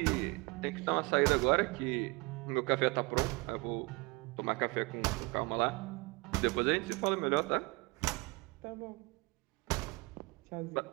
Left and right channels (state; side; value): quieter; left; 27.0 dB